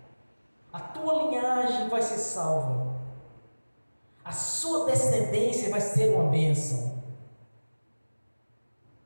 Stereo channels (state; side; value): inverted; both; correlation -1.00